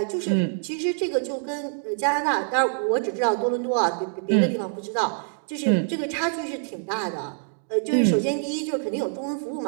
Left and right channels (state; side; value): silent; left; digital silence